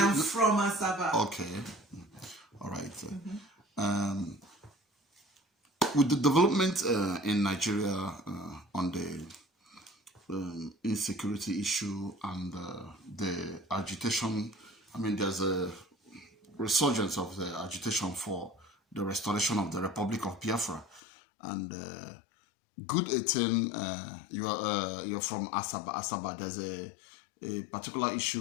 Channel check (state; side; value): drops out; right; at 21.0 s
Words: am from Asaba. Okay. All right. With the development in Nigeria on the insecurity issue and the agitation, I mean, there's a resurgence of the agitation for the restoration of the Republic of Biafra. And Good 18, you're from Asaba. Asaba, there's a particular